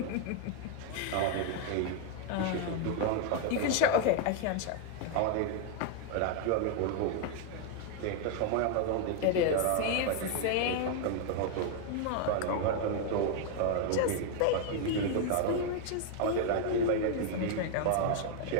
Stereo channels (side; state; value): both; different; correlation 0.00